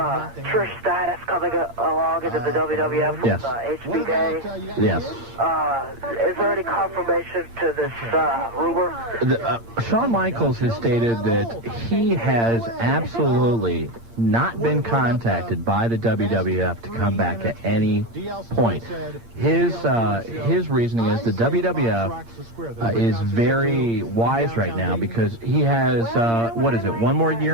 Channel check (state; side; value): late; left; 8.7 ms